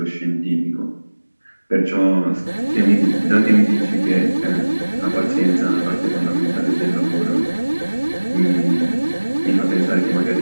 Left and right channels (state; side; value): inverted; both; correlation -1.00